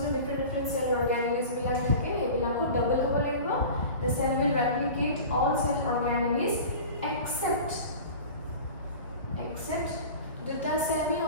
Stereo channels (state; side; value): inverted; both; correlation -0.36